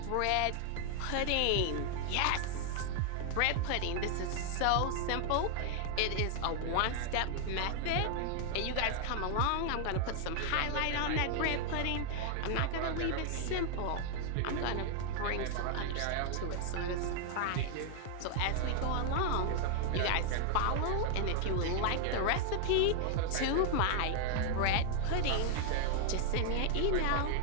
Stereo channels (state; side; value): different; both; correlation 0.00